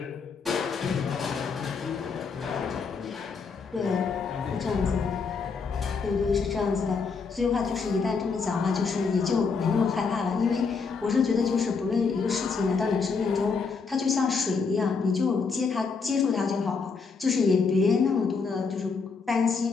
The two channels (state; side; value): quieter; right; 5.1 dB